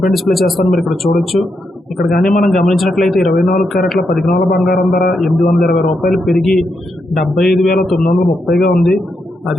పై డిస్ప్లే చేస్తాను, మీరు ఇక్కడ చూడొచ్చు. ఇక్కడ కానీ మనం గమనించినట్లయితే 24 క్యారెట్ల 10 గ్రాముల బంగారం ధర 820 రూపాయలు పెరిగి 75,930గా ఉంది.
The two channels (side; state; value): both; normal; correlation 0.82